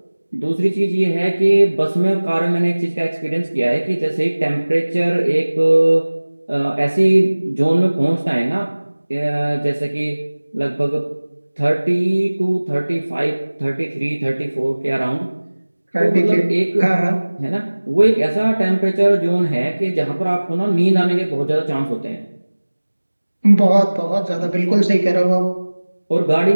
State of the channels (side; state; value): both; inverted; correlation -1.00